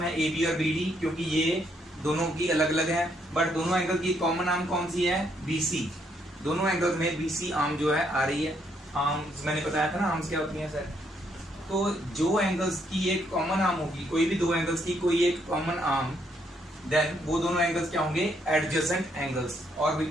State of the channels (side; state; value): both; normal; correlation 0.73